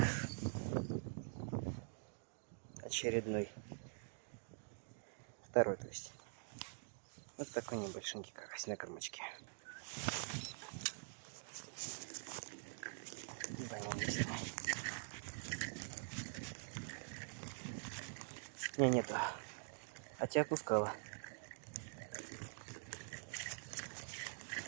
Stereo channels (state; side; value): silent; left; digital silence